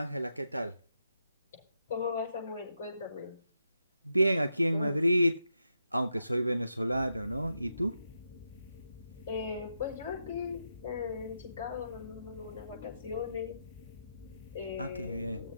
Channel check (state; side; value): inverted; both; correlation -0.84